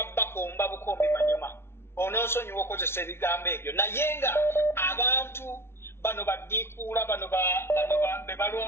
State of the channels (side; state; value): right; late; 0.12 ms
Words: bakomba bukombi manyuma onoosonyiwa okozesa ebigambo ebyo naye nga abantu bano baddiikuula bano be